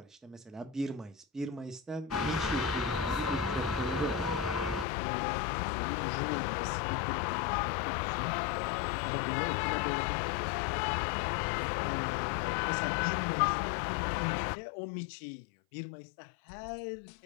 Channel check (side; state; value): right; drops out; at 4.9 s